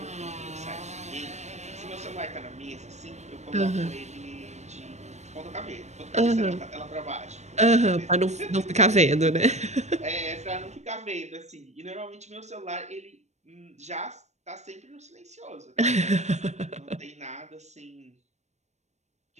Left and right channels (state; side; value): late; left; 0.33 ms